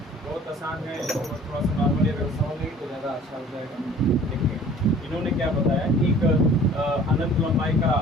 बहुत आसान है, थोड़ा सा नॉर्मली अगर समझेंगे तो ज़्यादा अच्छा हो जाएगा। देखिए, इन्होंने क्या बताया कि एक अनंत लंबाई का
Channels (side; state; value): both; normal; correlation 0.49